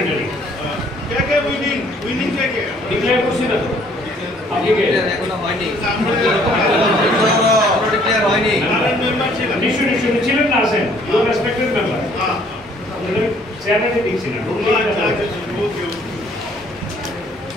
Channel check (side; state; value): both; normal; correlation 0.61